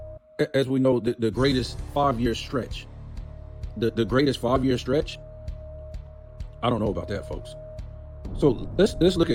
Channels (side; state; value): both; identical; correlation 1.00